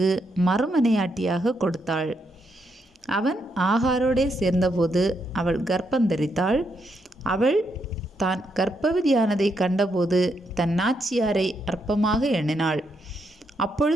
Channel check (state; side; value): normal; both; correlation 0.79